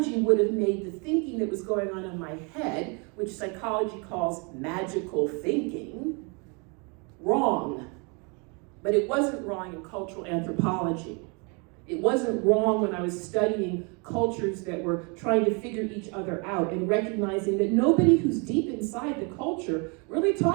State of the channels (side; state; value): left; quieter; 33.2 dB